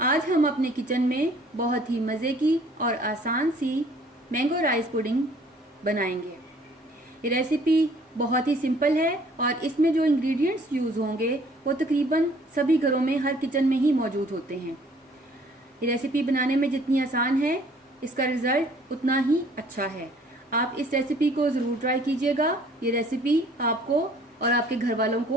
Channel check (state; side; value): normal; both; correlation 0.57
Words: आज हम अपने किचन में बहुत ही मज़े की और आसान सी मैंगो राइस पुडिंग बनाएंगे। ये रेसिपी बहुत ही सिंपल है और इसमें जो इंग्रेडिएंट्स यूज़ होंगे वो तकरीबन सभी घरों में, हर किचन में ही मौजूद होते हैं। ये रेसिपी बनाने में जितनी आसान है, इसका रिज़ल्ट उतना ही अच्छा है। आप इस रेसिपी को ज़रूर ट्राई कीजिएगा। ये रेसिपी आपको और आपके घर वालों